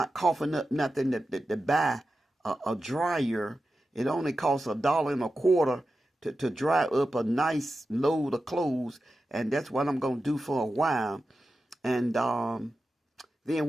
coughing up nothing to buy a dryer It only costs $1.25 to dry up a nice load of clothes, and that's what I'm gonna do for a while. And then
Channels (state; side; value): normal; both; correlation 0.92